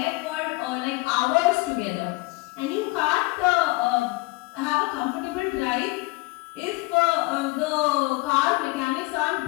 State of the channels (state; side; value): quieter; right; 23.3 dB